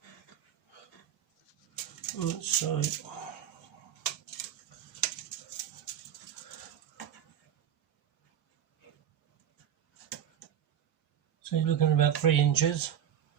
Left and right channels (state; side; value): quieter; left; 10.0 dB